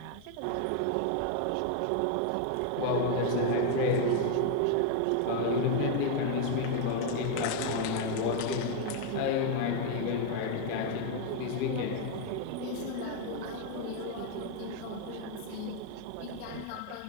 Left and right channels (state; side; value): different; both; correlation 0.00